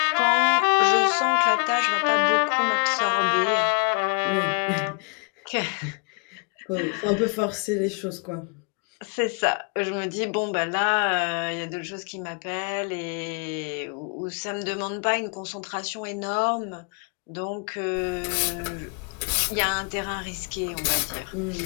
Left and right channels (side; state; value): right; quieter; 37.4 dB